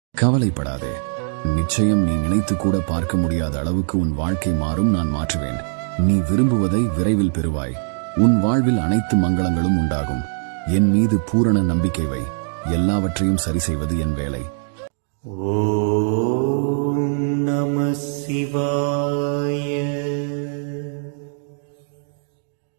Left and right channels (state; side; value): silent; left; 65 dB below the other